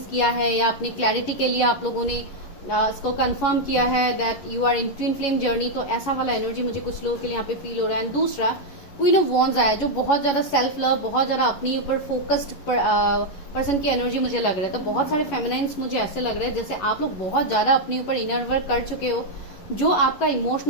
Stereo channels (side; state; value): right; late; 11 ms